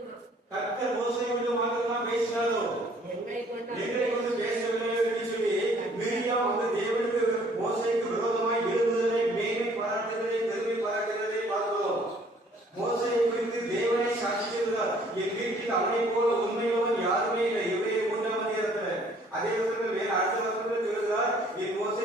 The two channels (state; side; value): normal; both; correlation 0.58